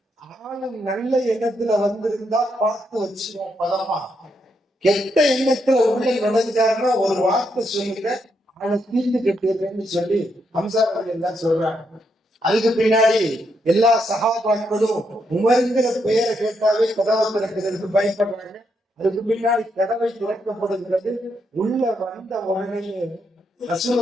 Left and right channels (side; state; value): both; normal; correlation 0.79